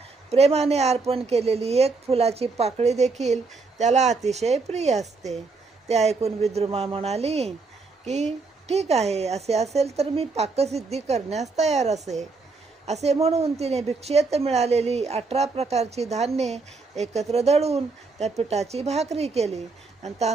प्रेमाने अर्पण केलेली एक फुलाची पाकळी देखील त्याला अतिशय प्रिय असते. ते ऐकून विद्रुमा म्हणाली की ठीक आहे, असे असेल तर मी पाकसिद्धी करण्यास तयार असे. असे म्हणून तिने भिक्षेत मिळालेली 18 प्रकारची धान्ये एकत्र दळून त्या पिठाची भाकरी केली आणि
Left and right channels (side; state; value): left; quieter; 4.1 dB